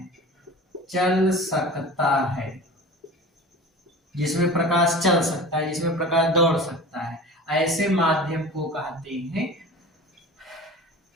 चल सकता है, जिसमें प्रकाश चल सकता है, जिसमें प्रकाश दौड़ सकता है, ऐसे माध्यम को कहते हैं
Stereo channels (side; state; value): both; normal; correlation 0.37